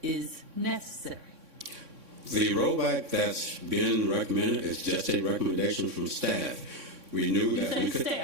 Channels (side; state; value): left; late; 3.6 ms